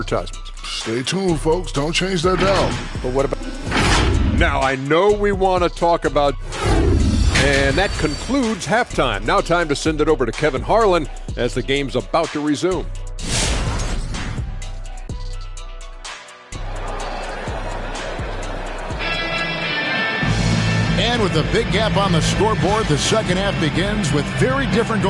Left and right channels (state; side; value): identical; both; correlation 1.00